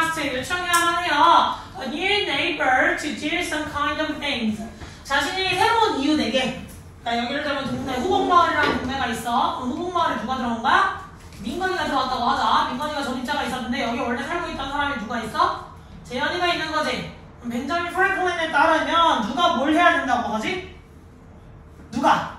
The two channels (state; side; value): identical; both; correlation 1.00